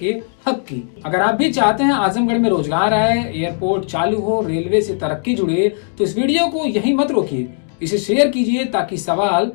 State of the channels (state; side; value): silent; right; digital silence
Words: हक की। अगर आप भी चाहते हैं आजमगढ़ में रोजगार आए, एयरपोर्ट चालू हो, रेलवे से तरक्की जुड़े, तो इस वीडियो को यहीं मत रोकिए, इसे शेयर कीजिए ताकि सवाल